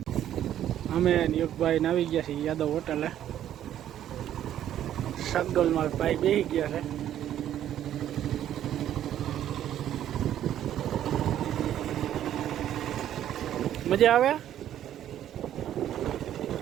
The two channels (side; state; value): left; quieter; 11.2 dB